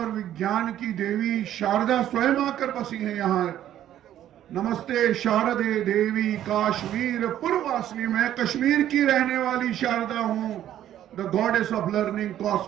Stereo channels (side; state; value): left; quieter; 11.7 dB